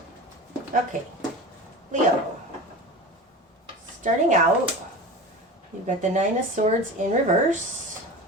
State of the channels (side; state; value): both; normal; correlation 0.31